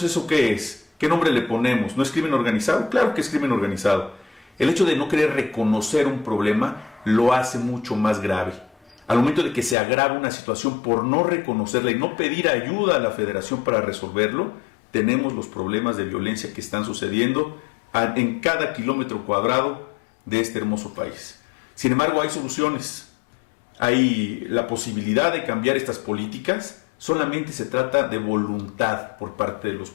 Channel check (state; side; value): drops out; right; at 9.8 s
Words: ¿eso qué es? ¿Qué nombre le ponemos? ¿No es crimen organizado? Claro que es crimen organizado. El hecho de no querer reconocer un problema lo hace mucho más grave. Al momento de que se agrava una situación por no reconocerla y no pedir ayuda a la Federación para resolverlo, tenemos los problemas de violencia que están sucediendo en cada kilómetro cuadrado de este hermoso país. Sin embargo, hay soluciones. Hay la posibilidad de cambiar estas políticas. Solamente se trata de voluntad por parte de los